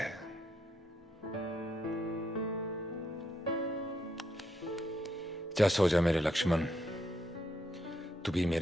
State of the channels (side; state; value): both; normal; correlation 0.77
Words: जा सो जा मेरे लक्ष्मण, तू भी